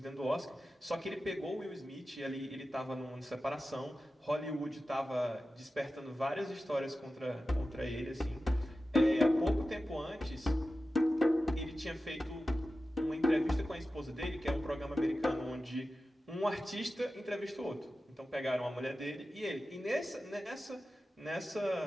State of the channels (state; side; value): normal; both; correlation 0.94